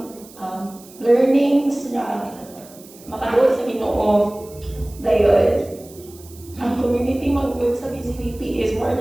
ang learnings na makaduol sa Ginoo. Dayon, ang community mag-group sa BCBP is more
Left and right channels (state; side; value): noise; right; hiss, 22 dB below the sound